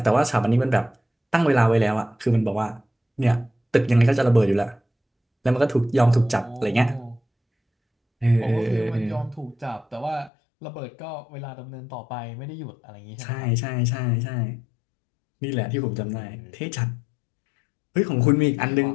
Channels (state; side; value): drops out; right; at 10.3 s